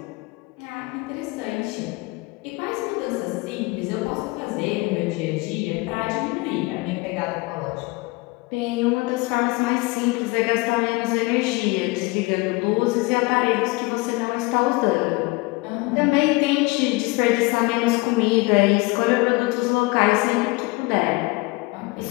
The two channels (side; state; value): right; quieter; 24.1 dB